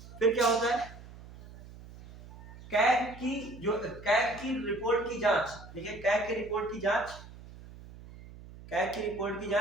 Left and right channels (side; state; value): right; noise; hum, 17 dB below the sound